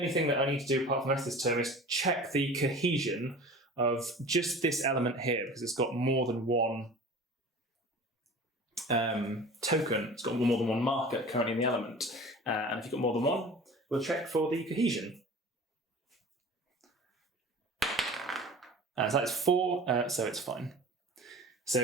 thing that I need to do apart from the rest of this turn is check the cohesion of just this element here, because it's got more than one token. It's got more than one marker currently in the element. And if you've got more than one, we'll check for the cohesion. So that's 4, so it's fine.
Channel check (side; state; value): both; normal; correlation 0.40